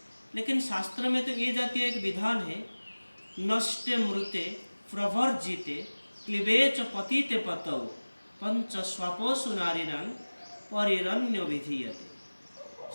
लेकिन शास्त्र में तो ये जातीय एक विधान है, नष्टे मृते प्रवर्जिते क्लिवेच पतिते पतौ पंच स्वपोषु नारीणां परिरण्य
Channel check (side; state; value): both; inverted; correlation -1.00